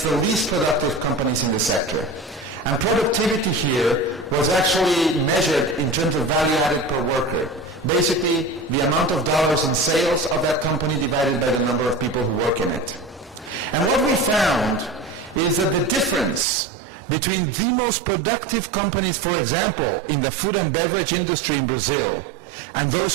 the least productive companies in the sector. And productivity here was actually measured in terms of value added per worker. Basically, the amount of dollars in sales of that company divided by the number of people who work in it. And what we found is that the difference between the most productive companies, for example, in the food and beverage industry in Brazil, and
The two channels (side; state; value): left; drops out; at 16.4 s